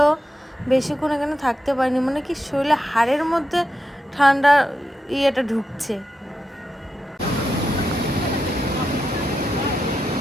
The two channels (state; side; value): normal; both; correlation 0.87